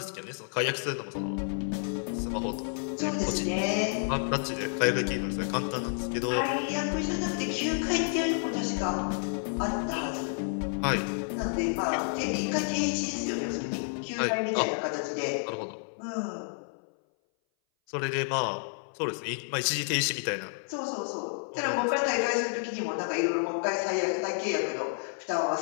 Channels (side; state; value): right; silent; 58 dB below the other